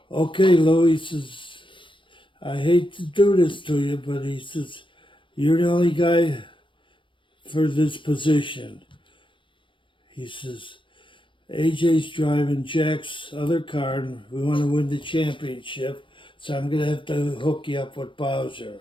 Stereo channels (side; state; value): right; late; 0.25 ms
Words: okay, Lou, he says, I hate to do this to you, but he says, you're the only guy for this position. He says, AJ's driving Jack's other car and we want to win the championship, so I'm going to have to hook you up with Bowsher.